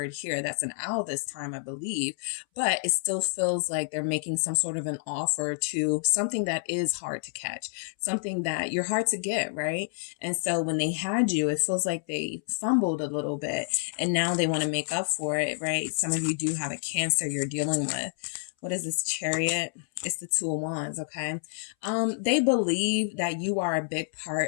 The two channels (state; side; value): silent; right; 59 dB below the other